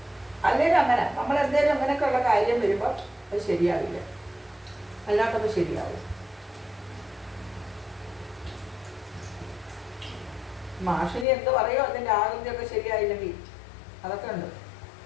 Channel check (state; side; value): drops out; right; at 11.2 s